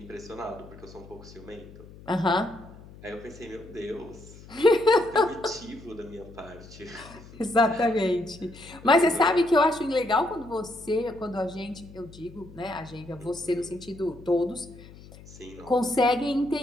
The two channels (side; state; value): left; noise; hum, 19 dB below the sound